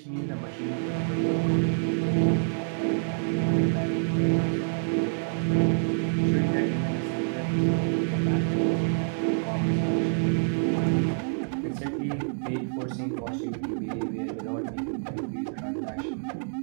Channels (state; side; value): silent; left; digital silence